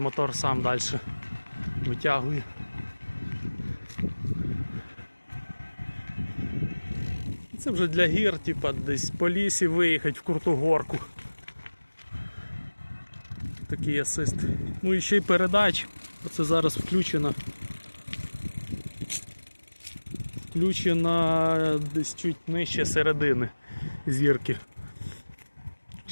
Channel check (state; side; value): inverted; both; correlation -1.00